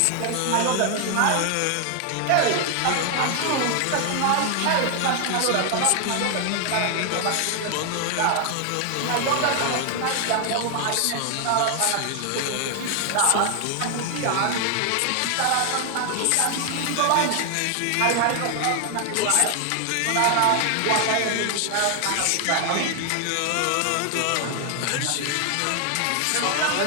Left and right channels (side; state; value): both; different; correlation 0.00